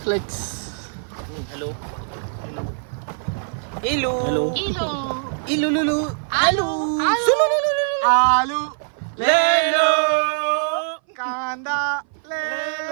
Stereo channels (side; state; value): left; silent; 59 dB below the other